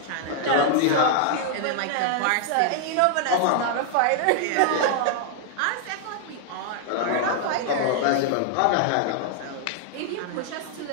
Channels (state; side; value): different; both; correlation 0.00